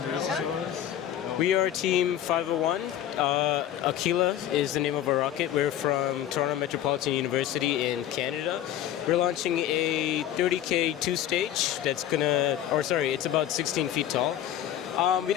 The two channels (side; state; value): right; quieter; 11.4 dB